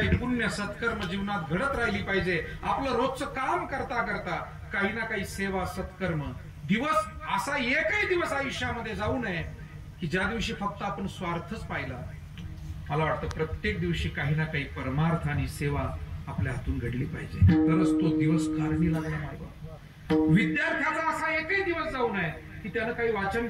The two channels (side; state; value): both; identical; correlation 1.00